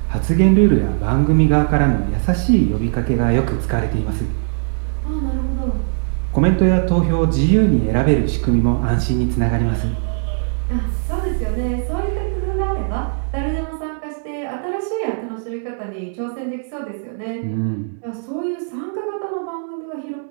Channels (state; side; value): silent; left; digital silence